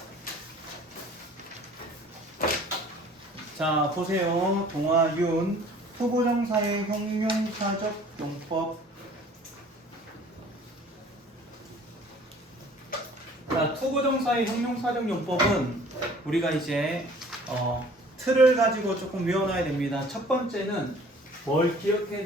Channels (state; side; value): normal; both; correlation 0.51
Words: 자, 보세요. 동아윤 투부정사의 형용사적 용법. 자, 투부정사의 형용사적 용법은 우리가 이제 틀을 가지고 조금 외워놔야 됩니다. 첫 번째는 뭘 기억해야